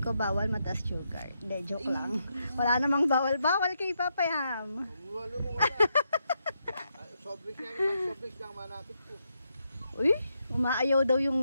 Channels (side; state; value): both; inverted; correlation -0.82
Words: bawal mataas sugar. Hindi, joke lang. Wala namang bawal kay Papayam. Wala mo wala. Sobrik lang manapit ko. Uy, umaayaw daw